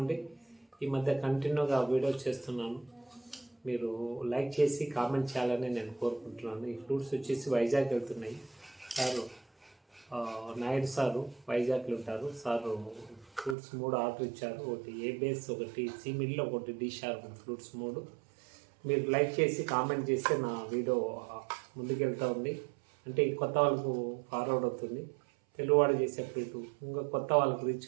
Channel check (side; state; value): left; drops out; at 13.6 s